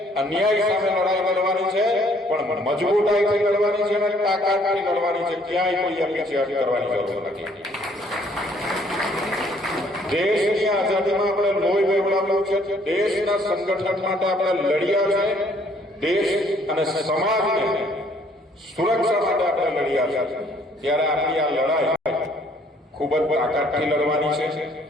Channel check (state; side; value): normal; both; correlation 0.62